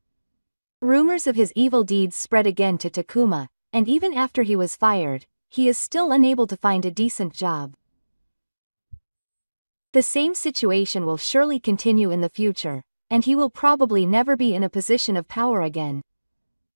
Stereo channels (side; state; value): both; inverted; correlation -1.00